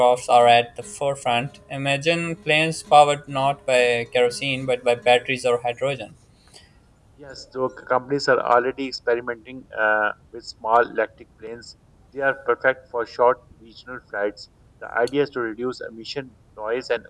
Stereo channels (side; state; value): both; identical; correlation 1.00